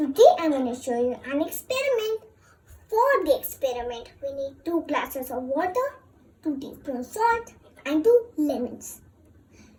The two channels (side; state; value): both; identical; correlation 1.00